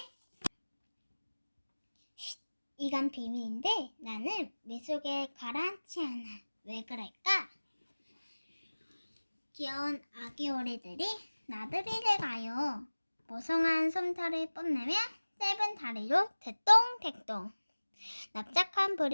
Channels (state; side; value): inverted; both; correlation -1.00